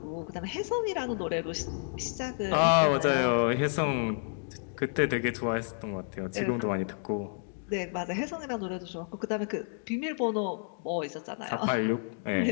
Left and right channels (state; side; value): silent; right; digital silence